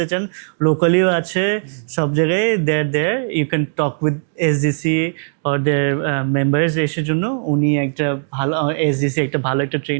চান, লোকালিও আছে সব জায়গায়, there you can talk with SDC or their members এসের জন্য। উনি একটা ভালো এসডিসি একটা ভালো একটা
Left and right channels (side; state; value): left; silent; digital silence